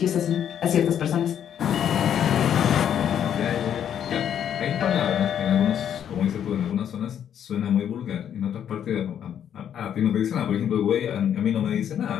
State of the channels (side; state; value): right; quieter; 9.3 dB